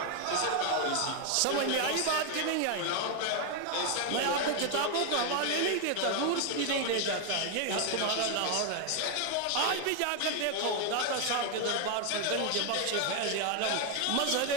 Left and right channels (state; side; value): different; both; correlation 0.01